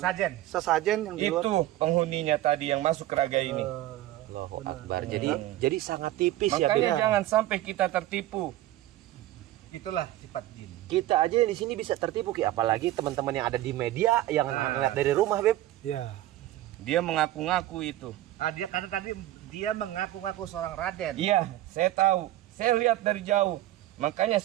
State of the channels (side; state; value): left; quieter; 14.8 dB